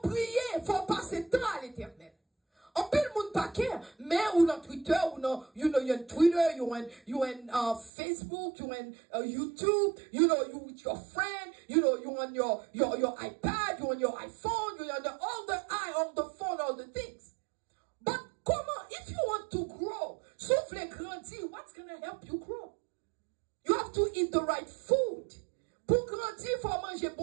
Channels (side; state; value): left; drops out; at 7.9 s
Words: prier, faut passer temps à l'éternel. En pile monde pas care, mais ou dans Twitter, ou dans, you know, you're on Twitter, you on Facebook, you on YouTube, you know, you with your friend, you know, you on your iPad, you on your iPhone, you on all the phone, all the things. But comment, if you want to grow, sauf les grandir, what's going to help you grow? You have to eat the right food. Pour grandir, il faut manger,